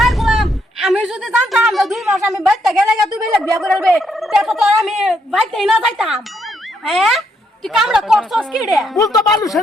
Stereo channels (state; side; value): normal; both; correlation 0.75